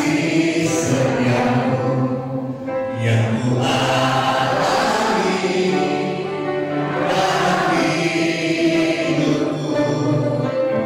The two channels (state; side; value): identical; both; correlation 1.00